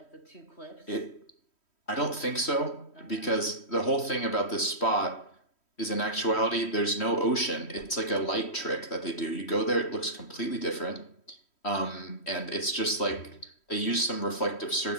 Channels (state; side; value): late; right; 3.1 ms